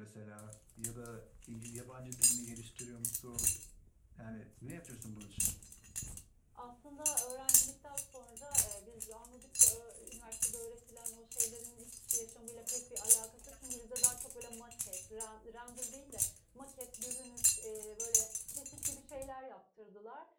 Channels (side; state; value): both; identical; correlation 1.00